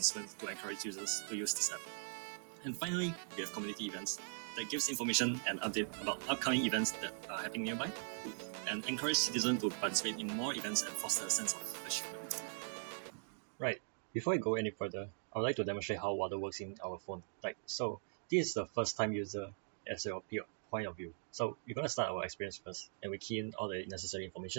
to encourage users to use this app. And finally, we have community events that gives information and update about upcoming events that are happening nearby, and encourage citizens to participate in more events and foster a sense of ownership. Right. Before I go any further, I would like to demonstrate how Waddle works in our phone. So this is the first time user as your point of view. So we're going to start our experience first, and we key in all the necessary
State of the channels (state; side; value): silent; left; digital silence